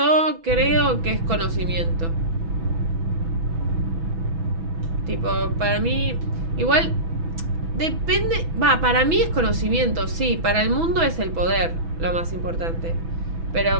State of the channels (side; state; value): left; late; 6.1 ms